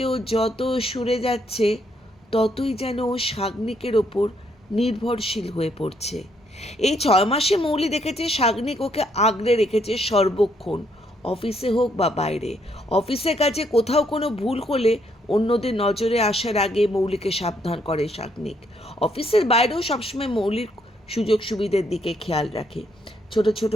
ও যত সরে যাচ্ছে ততই যেন ও শাগনিকের ওপর নির্ভরশীল হয়ে পড়ছে। এই 6 মাসে মৌলি দেখেছে শাগনিক ওকে আগলে রেখেছে সর্বক্ষণ, অফিসে হোক বা বাইরে। অফিসের কাজে কোথাও কোনো ভুল হলে অন্যদের নজরে আসার আগে মৌলিকে সাবধান করে শাগনিক। অফিসের বাইরেও সবসময় মৌলির সুযোগ সুবিধার দিকে খেয়াল রাখে, ছোট ছোট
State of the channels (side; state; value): both; normal; correlation 0.72